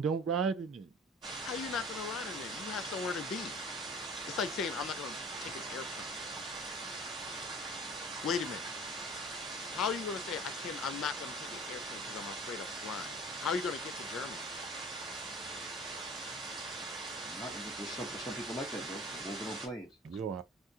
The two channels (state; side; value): normal; both; correlation 0.43